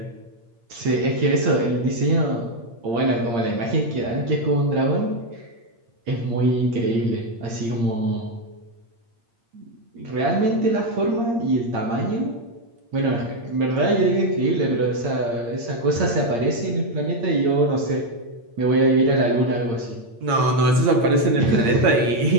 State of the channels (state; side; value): late; left; 8.7 ms